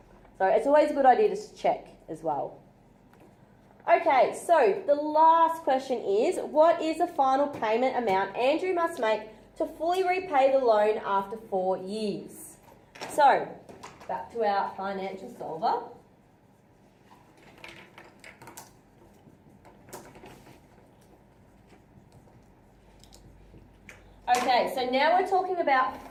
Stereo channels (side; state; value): both; identical; correlation 1.00